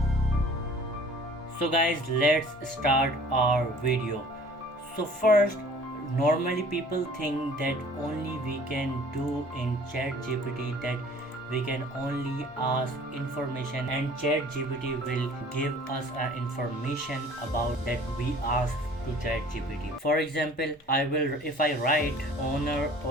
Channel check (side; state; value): both; normal; correlation 0.50